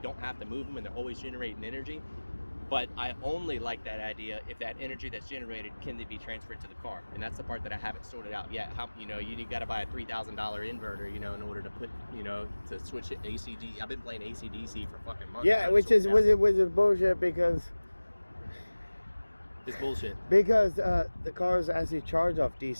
have to move them and they're always generating energy. But I only like that idea if that energy that's generated can be transferred to the car, and that's the part that I haven't sorted out yet. You got to buy a $3,000 inverter, in order to put, to switch it AC/DC. I've been playing AC/DC for fucking months. Yeah, which is bullshit, because it's bullshit. Because the cars actually charge off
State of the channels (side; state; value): both; inverted; correlation -1.00